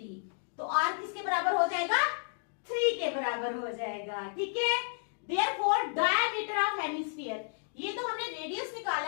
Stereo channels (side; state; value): right; silent; digital silence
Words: तो आर किसके बराबर हो जाएगा, 3 के बराबर हो जाएगा, ठीक है। देयरफॉर डायमीटर ऑफ हेमिस्फीयर, ये तो हमने रेडियस